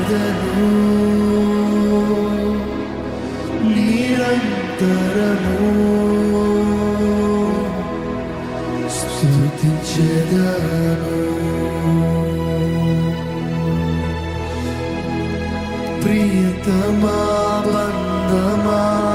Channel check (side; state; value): both; identical; correlation 1.00